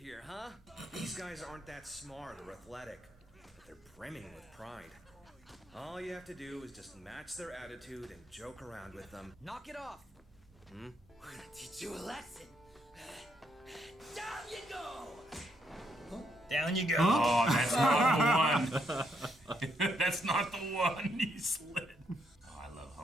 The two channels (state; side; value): normal; both; correlation 0.75